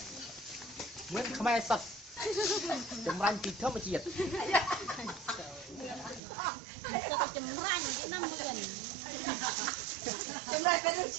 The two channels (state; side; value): drops out; left; at 6.2 s